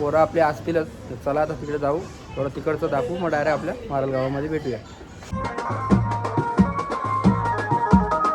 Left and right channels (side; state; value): both; identical; correlation 1.00